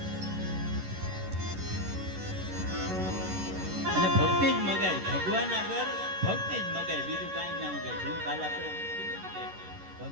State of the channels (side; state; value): left; late; 11 ms